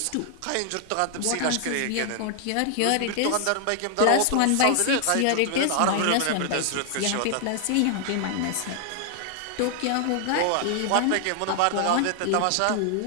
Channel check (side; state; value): both; different; correlation 0.00